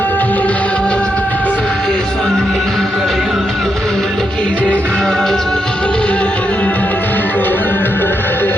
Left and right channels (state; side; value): normal; both; correlation 0.82